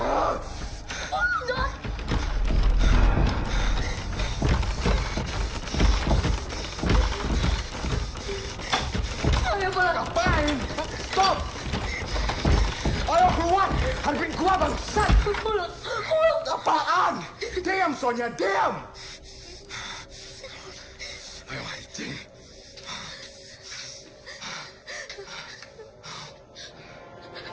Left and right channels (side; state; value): both; identical; correlation 1.00